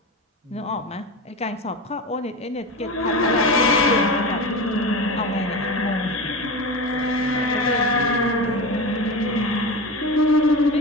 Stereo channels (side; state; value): both; normal; correlation 0.25